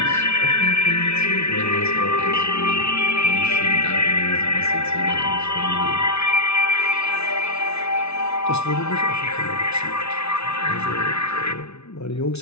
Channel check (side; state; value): right; late; 0.80 ms